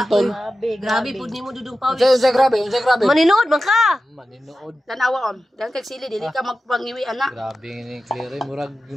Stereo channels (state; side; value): normal; both; correlation 0.93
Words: Grabe po ni mo dudong pawis. Unsay grabe. Maninood man ka. Maninood. Tanawa on. Dan kag sili dili ka magpangiwi ana. Grabe ni Claire, murag